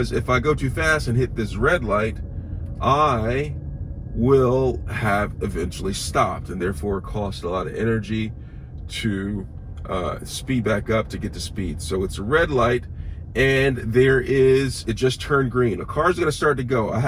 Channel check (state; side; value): identical; both; correlation 1.00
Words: if I go too fast and hit this red light, I will have eventually stopped, and therefore cost a lot of energy to speed back up to get to speed. So it's a red light, and it just turned green. A car's going to start to go. I